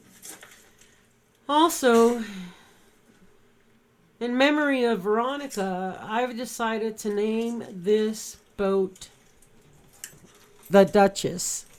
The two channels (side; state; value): both; identical; correlation 1.00